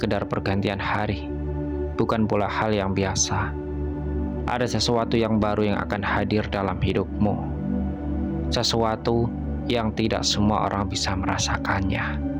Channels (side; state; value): both; identical; correlation 1.00